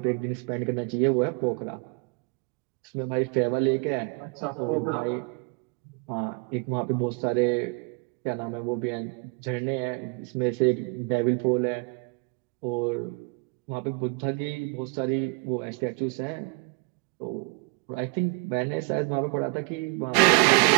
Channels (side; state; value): left; quieter; 32.5 dB